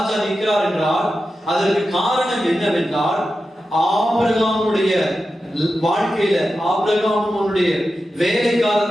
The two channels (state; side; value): normal; both; correlation 0.91